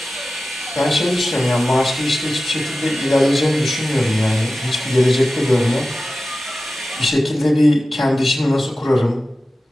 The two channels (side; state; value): both; normal; correlation 0.95